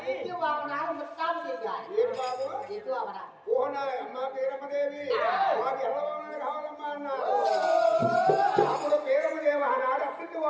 ఎత్తు వాహనాలు ముస్తాబు చేయాలి ఏంటి బాబు? ఎత్తు అవరా ఓ నా అమ్మ పేరమ్మదేవి మాకు ఎలా వామనాలు కావాలమ్మా అన్నారు. అప్పుడు పేరమ్మదేవి ఆనాడు అప్పుడు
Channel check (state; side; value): identical; both; correlation 1.00